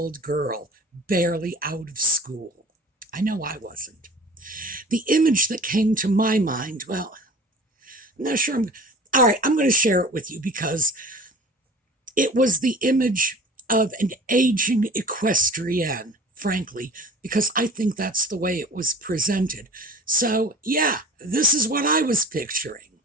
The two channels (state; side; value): normal; both; correlation 0.41